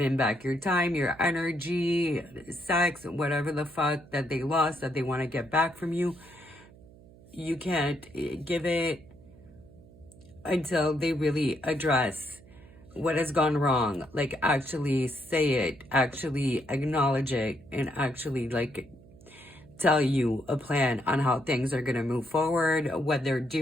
back your time, your energy, sex, whatever the fuck that they lost that they want to get back from you. You can't give it until they really address what has gone wrong. Like actually say it, actually acknowledge it, and actually like tell you a plan on how things are going to move forward, what they're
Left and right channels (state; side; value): noise; right; hum, 23 dB below the sound